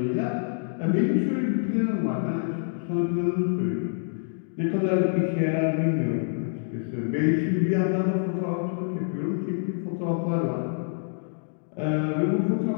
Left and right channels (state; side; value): silent; right; digital silence